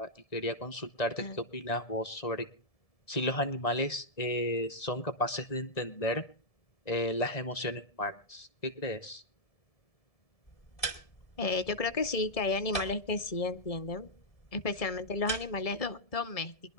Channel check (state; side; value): late; right; 1.7 ms